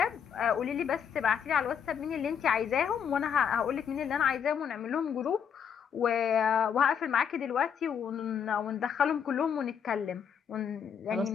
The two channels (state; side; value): quieter; right; 7.7 dB